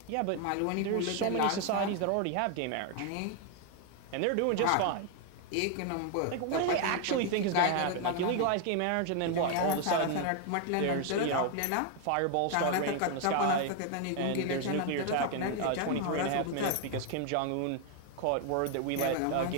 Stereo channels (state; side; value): different; both; correlation 0.01